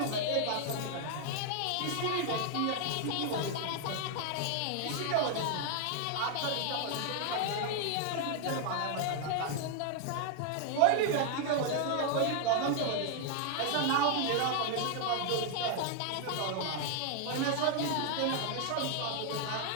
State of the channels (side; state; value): both; different; correlation 0.00